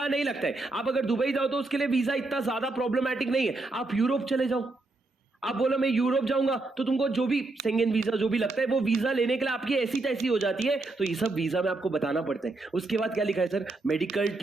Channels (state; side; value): quieter; left; 3.2 dB